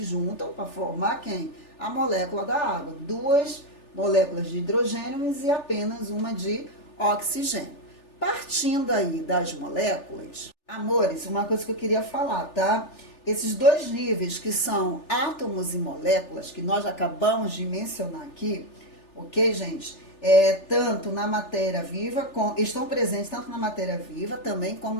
juntam para formar quem? A molécula da água. 2 moléculas de hidrogênio e apenas uma de oxigênio. Partindo aí das moléculas, amores, uma coisa que eu queria falar, tá? Esses 2 níveis que são átomos e moléculas, que nós acabamos de mencionar aqui, ok, gente? Tanto na matéria viva, estão presentes tanto na matéria viva também como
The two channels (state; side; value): late; right; 3.4 ms